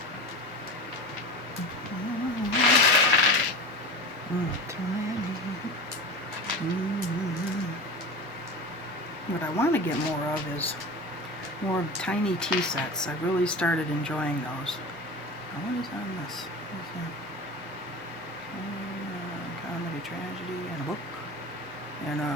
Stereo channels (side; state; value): both; normal; correlation 0.30